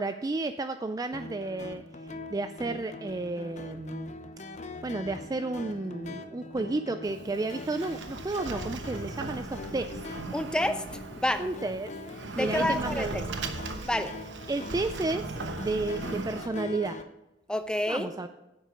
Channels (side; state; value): both; normal; correlation 0.66